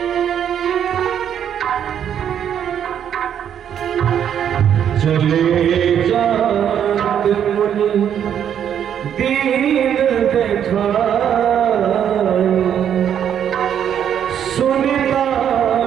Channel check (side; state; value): left; quieter; 9.1 dB